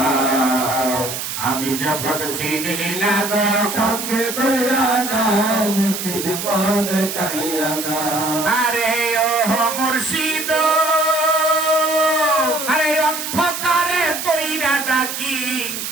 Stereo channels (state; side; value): noise; right; hiss, 5 dB below the sound